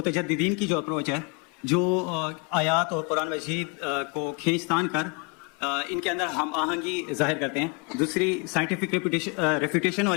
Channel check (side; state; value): right; quieter; 31.9 dB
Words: کی جو اپروچ ہے، جو آیات اور قرآن مجید کو کھینچ تان کر ان کے اندر ہم آہنگی ظاہر کرتے ہیں۔ دوسری سائنٹیفک ریفیوٹیشن